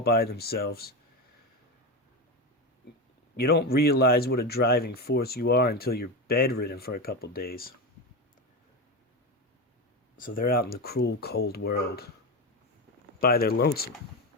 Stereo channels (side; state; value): both; normal; correlation 0.17